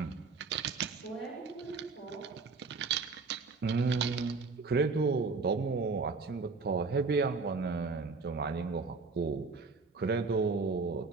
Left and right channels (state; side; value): quieter; left; 4.3 dB